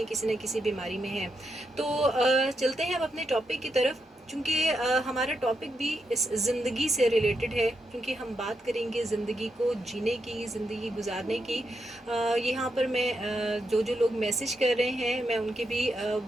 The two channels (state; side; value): normal; both; correlation 0.83